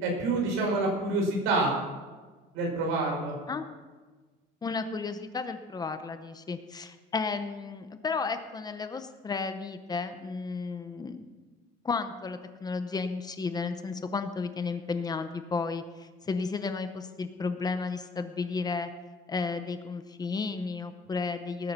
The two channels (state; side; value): normal; both; correlation 0.46